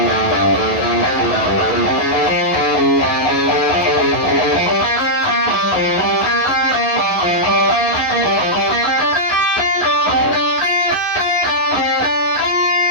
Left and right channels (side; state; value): right; late; 11 ms